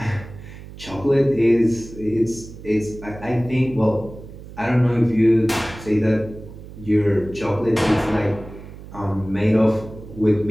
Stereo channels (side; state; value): right; noise; hum, 15 dB below the sound